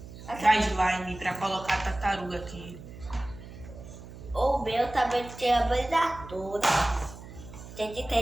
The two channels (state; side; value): noise; right; hum, 15 dB below the sound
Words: Da slime pra colocar a tartaruga aqui. O meu também tem a banda toda. Tem que